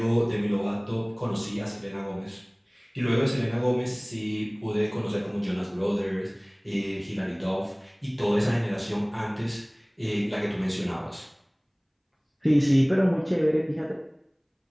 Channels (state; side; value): identical; both; correlation 1.00